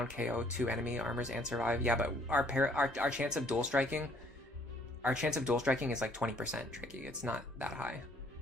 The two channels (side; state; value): both; normal; correlation 0.62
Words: KO 2 enemy armors and survive. Yeah, but our chance of dual striking, is like 20% tricky. It's not that high.